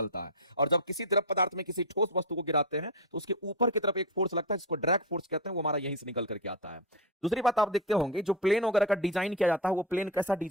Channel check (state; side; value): normal; both; correlation 0.13